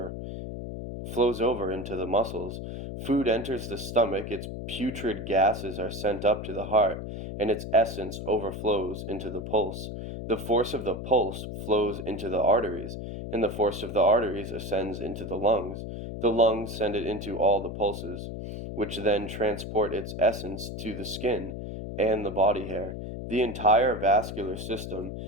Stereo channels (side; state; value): left; noise; hum, 7 dB below the sound